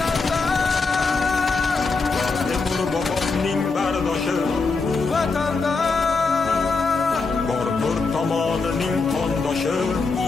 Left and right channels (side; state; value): right; quieter; 4.2 dB